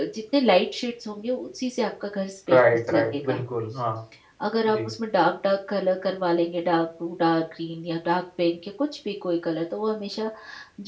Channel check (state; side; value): identical; both; correlation 1.00